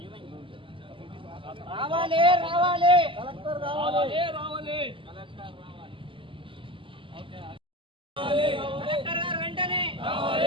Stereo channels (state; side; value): late; left; 0.25 ms